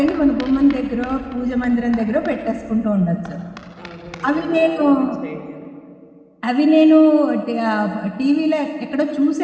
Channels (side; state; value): both; identical; correlation 1.00